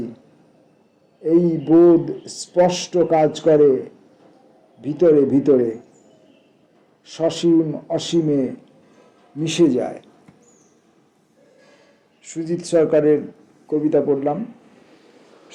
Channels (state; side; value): identical; both; correlation 1.00